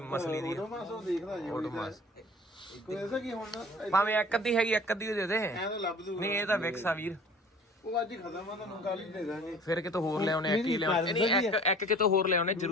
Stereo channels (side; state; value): both; normal; correlation 0.46